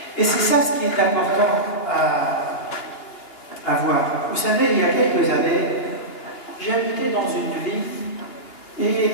Et c'est ça ce qui est important à voir. Vous savez, il y a quelques années, j'habitais dans une ville et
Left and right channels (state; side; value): late; right; 2.9 ms